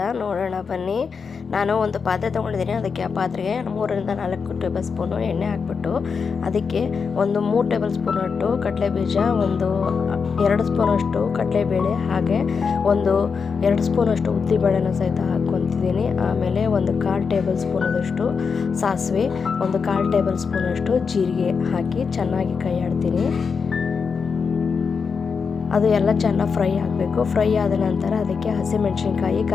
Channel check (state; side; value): quieter; right; 5.6 dB